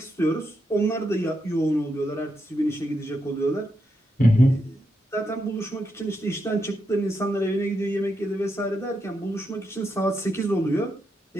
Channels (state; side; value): normal; both; correlation 0.83